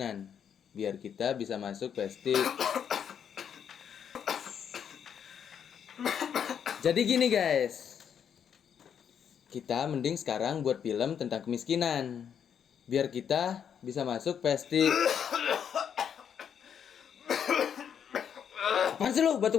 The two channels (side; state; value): right; quieter; 8.1 dB